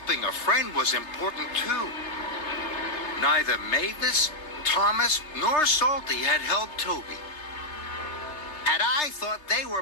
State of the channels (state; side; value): late; right; 3.3 ms